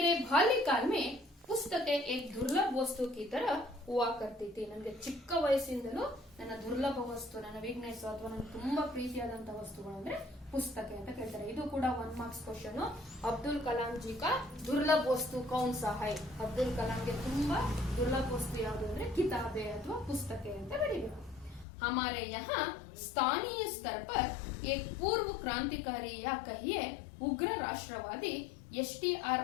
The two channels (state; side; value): drops out; right; at 21.7 s